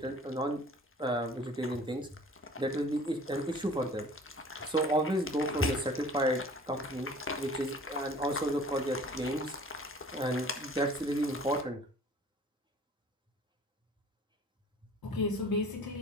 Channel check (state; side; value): normal; both; correlation 0.49